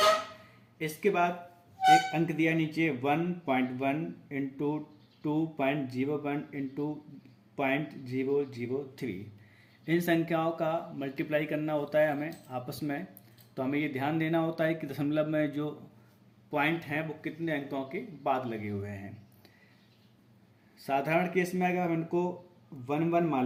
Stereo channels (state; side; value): identical; both; correlation 1.00